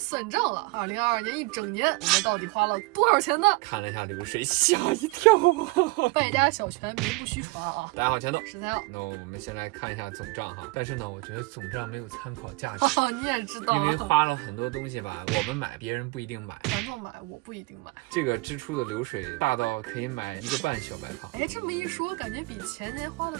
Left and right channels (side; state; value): left; quieter; 24.1 dB